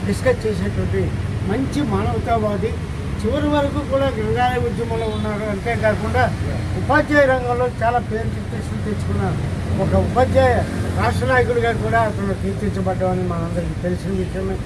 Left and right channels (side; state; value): both; identical; correlation 1.00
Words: డిస్కస్ చేసేటువంటి మంచి మానవతావాది. చివరి వరకు కూడా గ్రంథాలయ ఉద్యమంలో ఉన్నారు. అంతేకాకుండా ఉపాధ్యాయ రంగంలో చాలా పేరు ప్రతిష్టలు తెచ్చుకున్నారు. ఒక ఉపాధ్యాయ రాష్ట్ర నాయకుడిగా కూడా అతను కీర్తించబడ్డామని మనందరికీ తెలిసిన విషయమే.